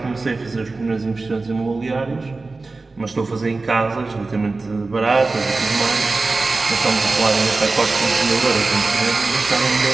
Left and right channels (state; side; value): quieter; left; 3.6 dB